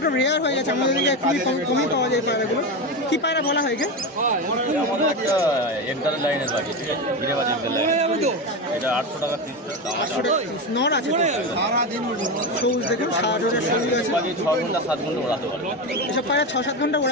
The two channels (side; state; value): both; normal; correlation 0.17